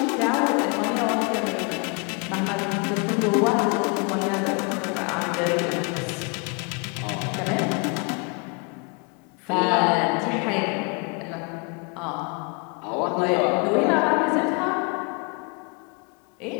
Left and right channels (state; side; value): quieter; right; 32.9 dB